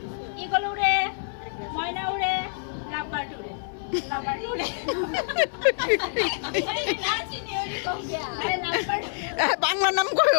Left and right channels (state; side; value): silent; right; digital silence